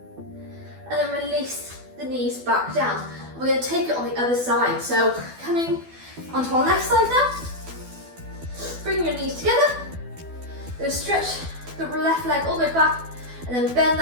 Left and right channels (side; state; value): left; late; 12 ms